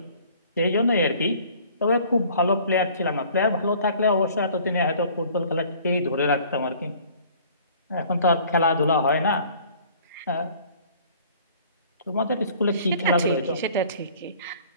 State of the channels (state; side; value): inverted; both; correlation -0.52